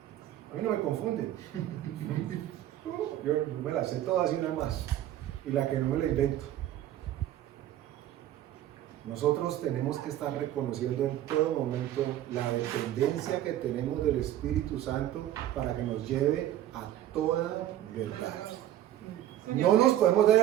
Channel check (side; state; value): left; quieter; 12.6 dB